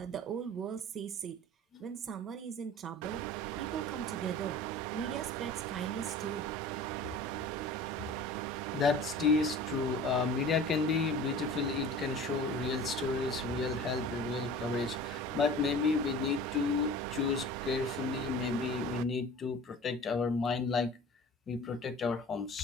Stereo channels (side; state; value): both; normal; correlation 0.41